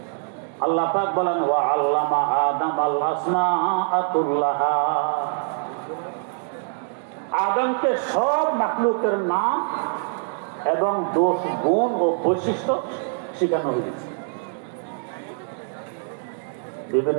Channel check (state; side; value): silent; left; digital silence